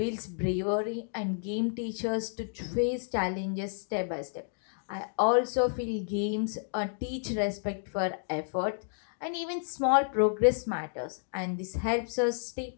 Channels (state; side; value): silent; right; digital silence